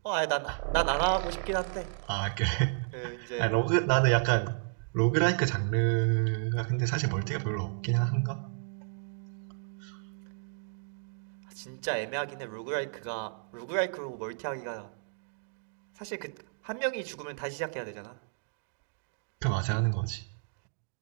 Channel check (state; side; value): silent; left; digital silence